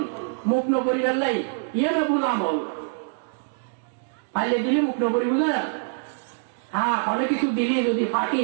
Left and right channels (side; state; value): left; silent; digital silence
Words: মুখ ন পরিবার ইয়ে না ভুল আমল ফাইলে দিলি মুখ ন পরিব না হ্যাঁ অনেক কিছু দিলি যদি